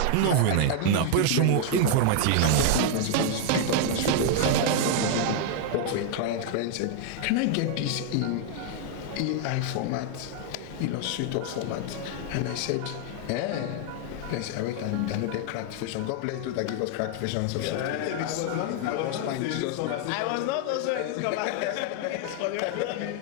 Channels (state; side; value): different; both; correlation 0.00